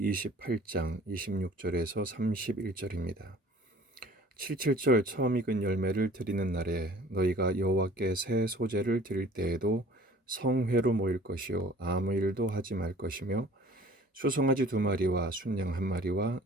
28장 26절에서 31절입니다. 77절 처음 익은 열매를 드리는 날에 너희가 여호와께 새 소재를 드릴 때에도 성회로 모일 것이요 아무 일도 하지 말 것이며 수송아지 2마리와 순양 1마리와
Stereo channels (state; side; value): normal; both; correlation 0.49